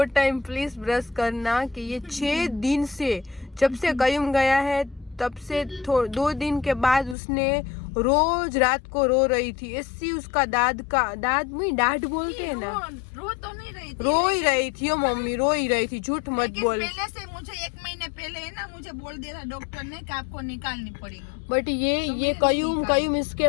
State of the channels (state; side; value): drops out; right; at 7.2 s